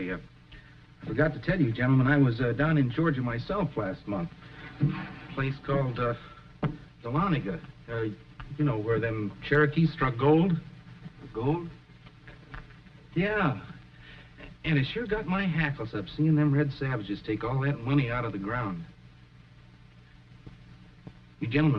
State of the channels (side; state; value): both; identical; correlation 1.00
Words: forgot to tell you, gentlemen, I was down in Georgia myself last month. A place called Dahlonega. You know, where them Cherokees struck gold. Gold? Yeah. And it sure got my hackles up seeing them red savages take all that money out of the ground. You